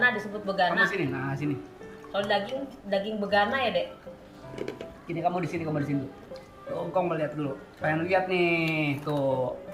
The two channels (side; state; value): both; identical; correlation 1.00